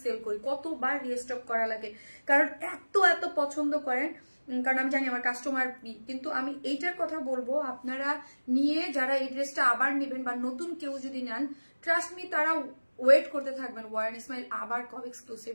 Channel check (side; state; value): both; inverted; correlation -1.00